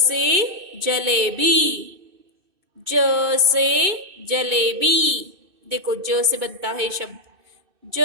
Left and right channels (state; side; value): late; left; 2.6 ms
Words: जलेबी, ज से जलेबी। देखो ज से बनता है शब्द,